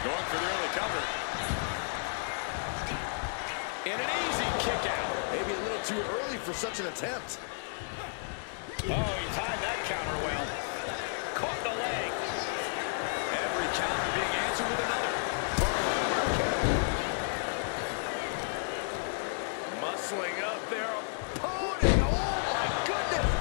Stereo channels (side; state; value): right; silent; digital silence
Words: going for the early cover. And an easy kick out. Maybe a little too early for such an attempt. Oh, he timed that counter well. Caught the leg. Every counter being answered with another. Muscling up their opponent. Oh, my goodness.